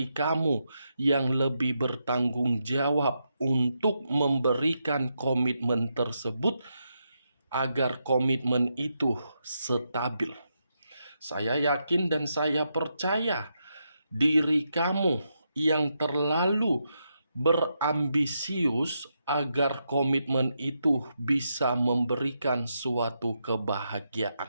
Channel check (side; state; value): both; inverted; correlation -0.83